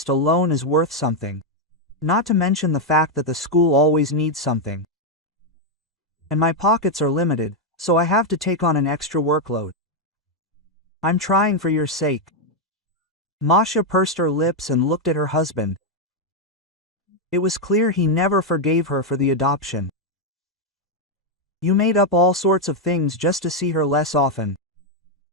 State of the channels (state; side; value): normal; both; correlation 0.02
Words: alone is worth something. Not to mention the fact that the school always needs something. And my pockets are limited, so I have to take on an extra workload. I'm trying for your sake." Masha pursed her lips and looked at her husband. It was clear he never forgave her for the adoption. "You made up all sorts of things just to see her less often.